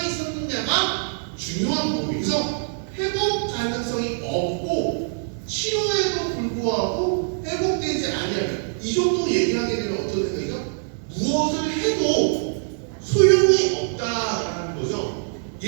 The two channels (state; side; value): silent; left; 60 dB below the other